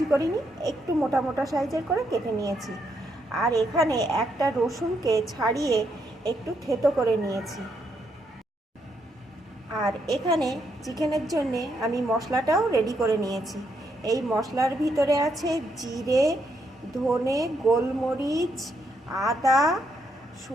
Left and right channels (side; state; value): both; normal; correlation 0.77